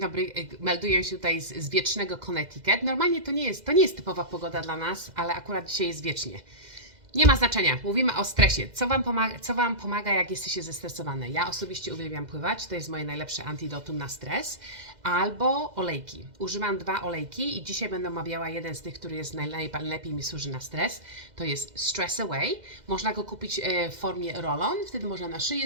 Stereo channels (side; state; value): left; late; 2.0 ms